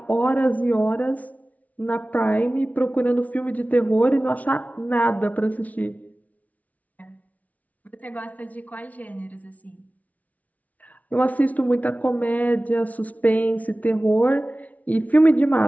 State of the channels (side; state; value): right; late; 0.071 ms